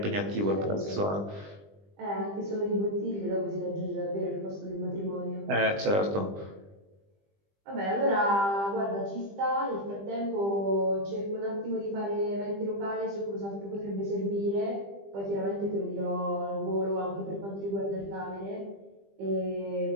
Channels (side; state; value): left; late; 20 ms